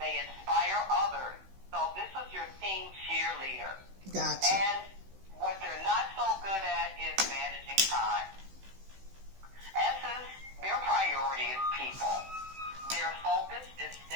inspire others. So this is your team cheerleader. Gotcha. And what they're not so good at is managing time. S is their priority is people. Their focus is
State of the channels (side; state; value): left; late; 16 ms